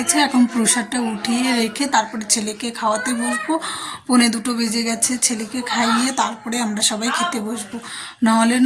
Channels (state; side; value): identical; both; correlation 1.00